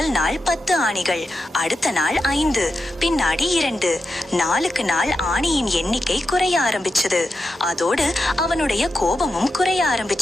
நாள் 10 ஆணிகள், அடுத்த நாள் 5, பின்னாடி 2. நாளுக்கு நாள் ஆணியின் எண்ணிக்கை குறைய ஆரம்பிச்சது. அதோடு அவனுடைய கோபமும் குறைய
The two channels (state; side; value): normal; both; correlation 0.89